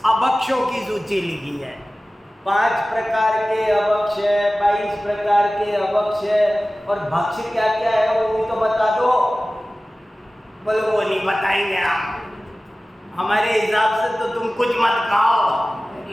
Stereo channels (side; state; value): both; normal; correlation 0.97